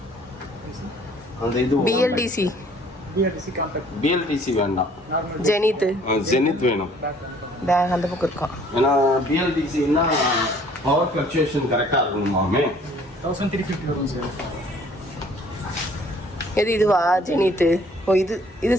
அந்த இது பிஎல்டிசி வேண்டாம், ஜெனித் வேணும். பேக் அந்த பக்கம் இருக்கும். ஏன்னா பிஎல்டிசின்னா பவர் ஃப்ளக்சுவேஷன் கரெக்டா இருக்கணுமாமே. 1350 வரும் சார். எது இதுவா ஜெனித்? ஓ இது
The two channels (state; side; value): normal; both; correlation 0.57